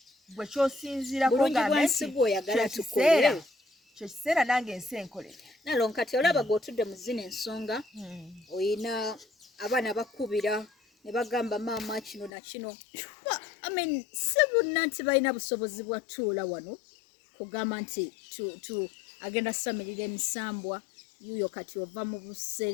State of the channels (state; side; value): drops out; right; at 12.3 s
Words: gwe kyosinziirako kyo kiseera nange ensi enkolere Naalongo kati olaba gw'otudde mu zino ensonga oyina abaana bakubira ne bagamba maama kino na kino si bonna nti balina busobozi bwa tuula wano kugamba nti agenda samirira emisambwa yuuyo kati ova mu